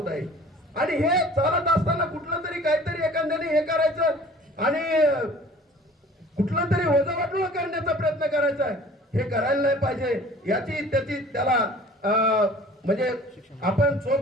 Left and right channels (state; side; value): normal; both; correlation 0.47